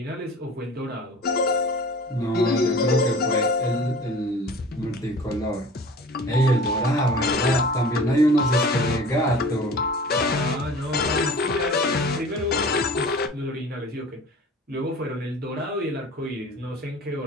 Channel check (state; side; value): normal; both; correlation 0.41